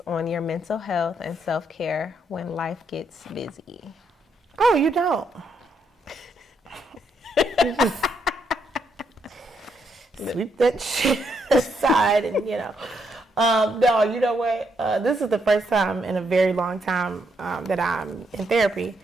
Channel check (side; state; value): both; normal; correlation 0.77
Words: on your mental health and self-care when life gets busy? Oh, you don't. You just sweep that shit aside and, no, you know what? This is the first time in a very long time that I'm in therapy.